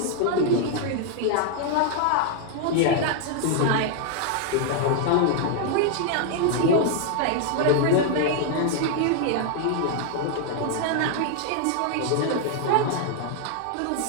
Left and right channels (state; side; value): different; both; correlation 0.00